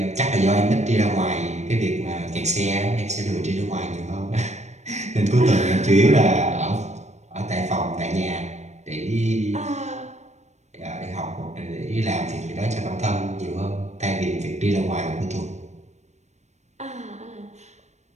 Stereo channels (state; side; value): late; left; 0.33 ms